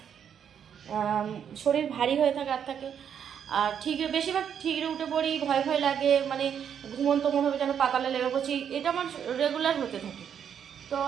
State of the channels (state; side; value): quieter; left; 8.3 dB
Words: শরীর ভারী হয়ে থাকে আর থাকে। আর বেশিরভাগ ঠিকরে উঠে পড়ি, ভয় ভয় লাগে, মানে ঘুমন্ত মনে হবে যেন পাতালে লেগে পড়ছি, এটা আমার রেগুলার হতে থাকে। তো